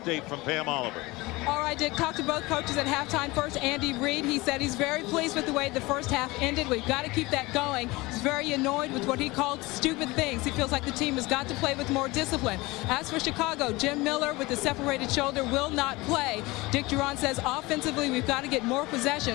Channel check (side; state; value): right; quieter; 21.9 dB